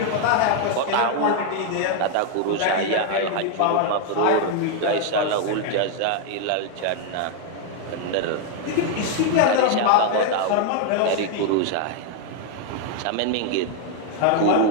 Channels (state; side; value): different; both; correlation 0.00